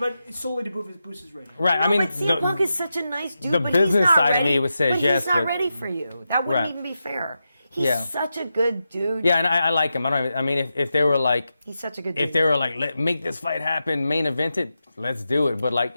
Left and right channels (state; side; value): inverted; both; correlation -0.89